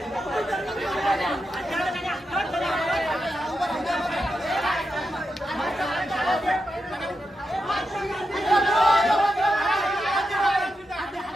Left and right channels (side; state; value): both; normal; correlation 0.87